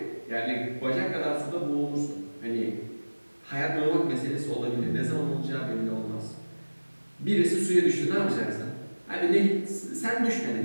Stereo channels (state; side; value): inverted; both; correlation -1.00